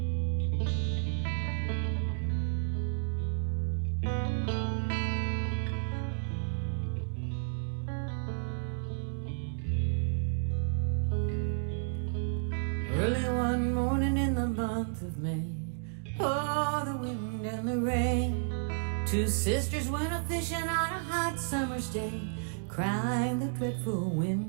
Early one morning in the month of May, oh, the wind and the rain. Two sisters went a fishing on a hot summer's day, crying the dreadful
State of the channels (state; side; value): silent; left; digital silence